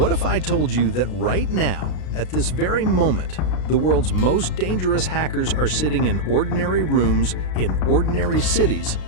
if I told you that right now, at this very moment, the world's most dangerous hackers are sitting in ordinary rooms in ordinary cities,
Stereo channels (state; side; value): late; right; 33 ms